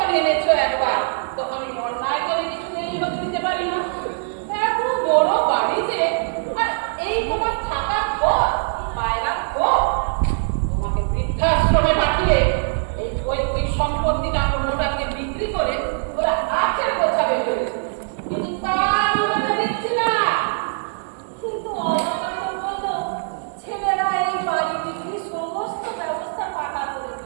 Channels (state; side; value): silent; left; 59 dB below the other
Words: এনেছো একবার, তখন আমি অন্যায় করে কিছু নেই হতে দিতে পারি না। এত বড় বাড়িতে আর এই তোমার থাকার ঘর, পায়রা ঘর, তোমাকে বৃদ্ধাশ্রমে পাঠিয়ে এই পৈতৃক সম্পত্তিটা কোনোটাকে বিক্রি করে ওরা আখের গোছাবে ফেলেছে। কিন্তু তার মনে দিচ্ছি না। কিন্তু অবকাশ বললো ছেলেরা এই বাড়ি বিক্রি সমস্ত ব্যবস্থা পাকা করে